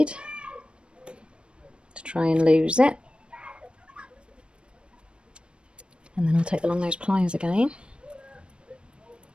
to try and lose it. And then I'll take the long nose pliers again.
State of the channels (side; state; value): left; late; 0.056 ms